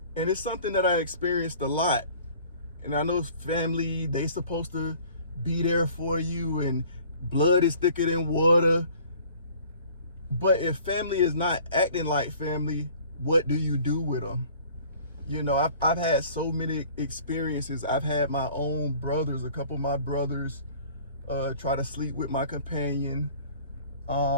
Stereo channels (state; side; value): inverted; both; correlation -0.50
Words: And it's something that I experienced a lot. And I know family, they supposed to be there for you and blood is thicker than water. But if family is not acting like family, what do you do with them? You know, I've had so many experiences. I've had my own brothers, a couple of my brothers try to sleep with my companion.